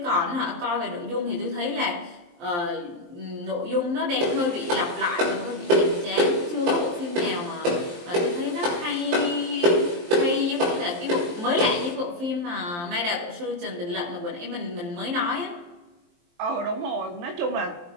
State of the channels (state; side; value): late; left; 23 ms